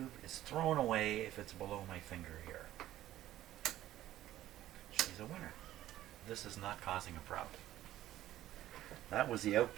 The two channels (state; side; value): quieter; left; 13.8 dB